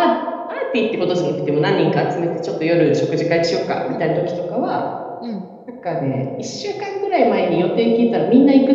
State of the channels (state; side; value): identical; both; correlation 1.00